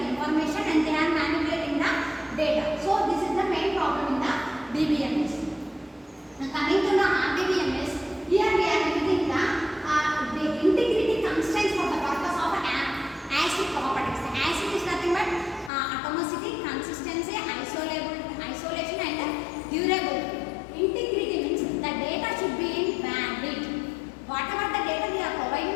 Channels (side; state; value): right; drops out; at 15.7 s